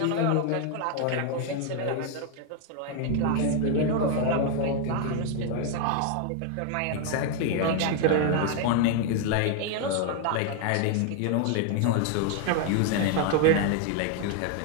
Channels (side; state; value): both; different; correlation 0.00